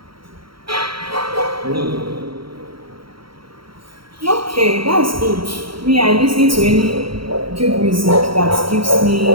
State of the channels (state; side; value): late; left; 0.74 ms